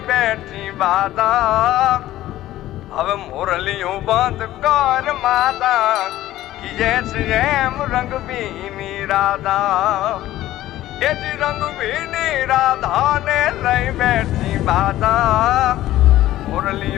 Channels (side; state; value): right; quieter; 14.6 dB